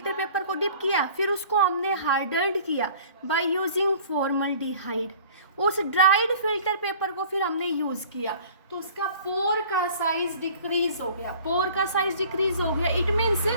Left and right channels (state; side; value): inverted; both; correlation -0.48